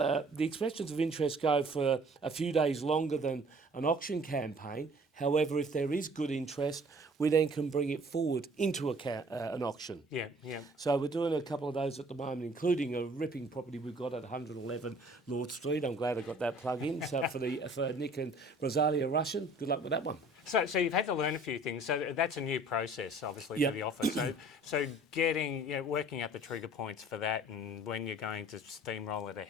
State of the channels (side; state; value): both; normal; correlation 0.52